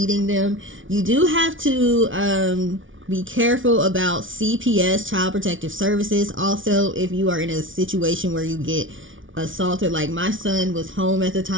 them. You do have to be careful about CPS, Child Protective Services. Also, if you are in a situation where you get assaulted, like my son was home at the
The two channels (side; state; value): left; late; 0.57 ms